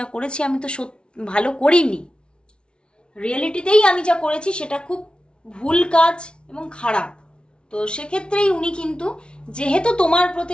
করেছি আমি তো ভালো করিনি, রিয়েলিটিতেই আমি যা করেছি সেটা খুব ভুল কাজ এবং খারাপ। তো সেক্ষেত্রেই উনি কিন্তু, যেহেতু তোমার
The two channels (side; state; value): right; late; 0.057 ms